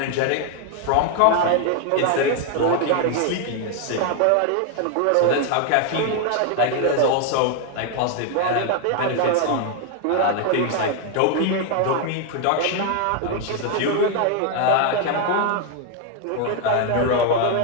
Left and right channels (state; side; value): different; both; correlation 0.01